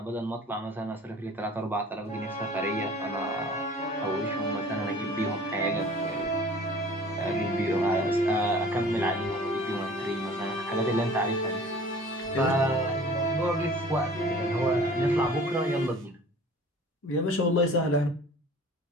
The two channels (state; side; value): normal; both; correlation 0.46